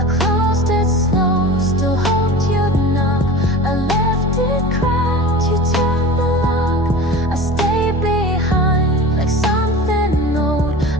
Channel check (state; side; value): normal; both; correlation 0.35